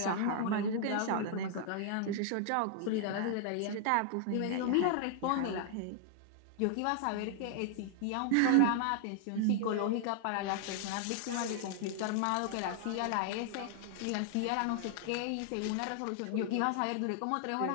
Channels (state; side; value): different; both; correlation -0.01